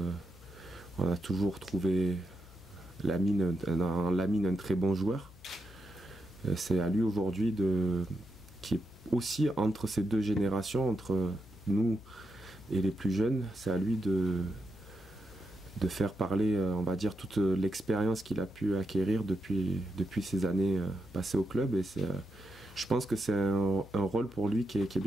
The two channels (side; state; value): left; noise; hum, 21 dB below the sound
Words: On a toujours trouvé Lamine un très bon joueur. C'est à lui aujourd'hui qui est aussi entre ces deux générations, entre nous et les plus jeunes, c'est à lui de faire parler, on va dire, toute l'expérience qu'il a pu acquérir depuis ces années passées au club. Et je pense que c'est un rôle pour lui qui est